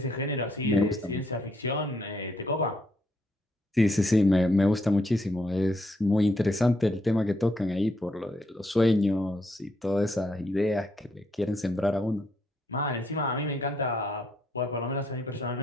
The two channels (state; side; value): normal; both; correlation 0.74